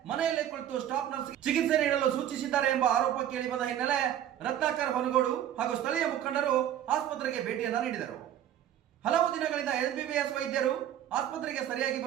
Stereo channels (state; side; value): quieter; left; 10.9 dB